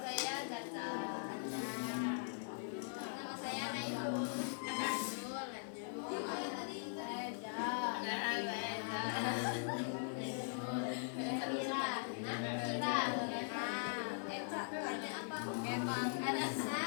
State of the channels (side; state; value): right; silent; 50 dB below the other